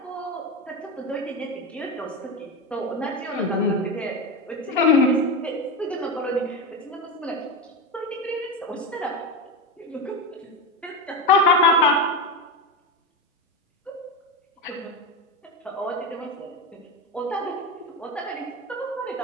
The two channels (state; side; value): normal; both; correlation 0.17